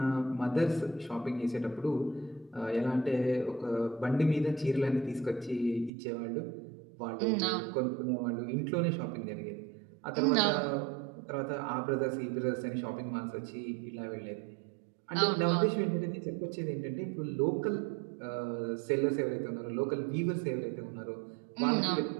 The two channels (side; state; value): left; drops out; at 5.9 s